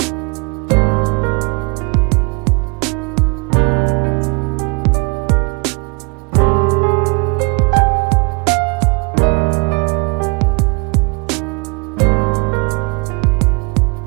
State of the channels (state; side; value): quieter; left; 30.7 dB